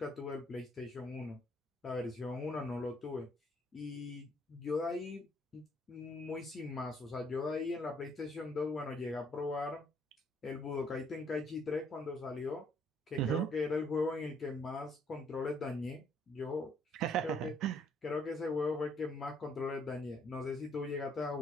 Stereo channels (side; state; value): both; normal; correlation 0.66